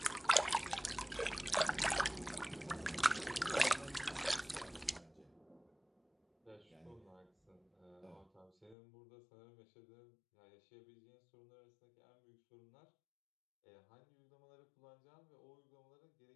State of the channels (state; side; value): drops out; right; at 8.8 s